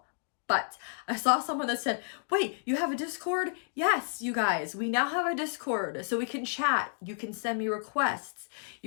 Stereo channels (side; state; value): right; silent; digital silence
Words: But I saw someone that said, wait, you have a Discord? Yes, you guys, we now have a Discord, so we can chat. You can send me requests.